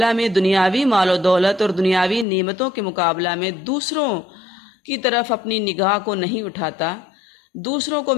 میں دنیاوی مال و دولت اور دنیاوی نعمتوں کے مقابلہ میں دوسروں کی طرف اپنی نگاہ کو نہیں اٹھاتا، دوسروں کو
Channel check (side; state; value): right; drops out; at 2.2 s